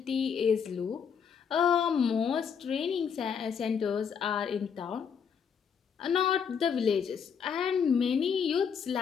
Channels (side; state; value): right; quieter; 6.9 dB